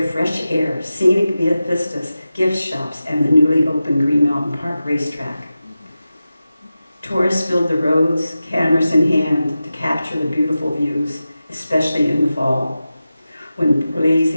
fresh air, scenic vistas, gift shops, and the newly opened Green Mountain Park racetrack. Tourists filled the roads, cameras in hand, to capture the beautiful views, especially in the fall, when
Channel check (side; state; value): both; inverted; correlation -0.94